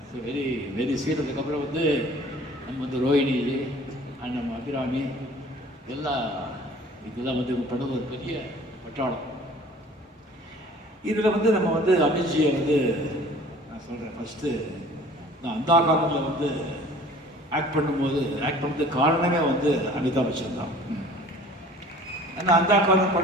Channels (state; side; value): normal; both; correlation 0.49